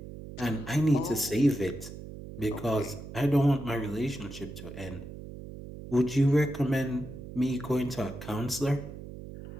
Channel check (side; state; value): right; noise; hum, 12 dB below the sound